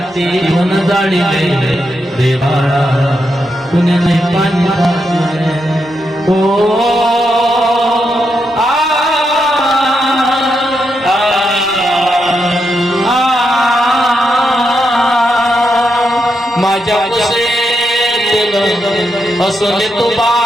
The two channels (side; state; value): both; normal; correlation 0.83